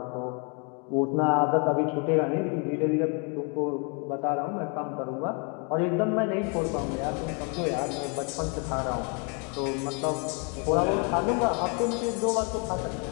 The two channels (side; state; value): right; quieter; 35.5 dB